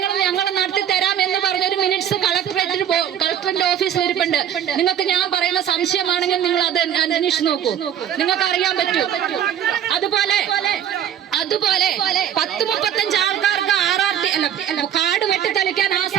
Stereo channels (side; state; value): left; quieter; 9.7 dB